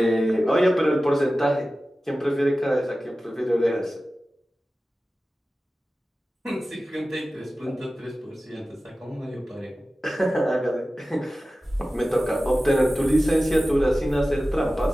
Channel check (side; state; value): both; normal; correlation 0.95